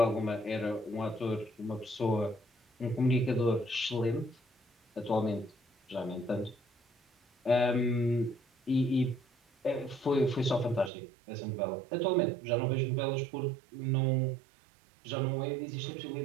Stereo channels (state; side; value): drops out; left; at 10.9 s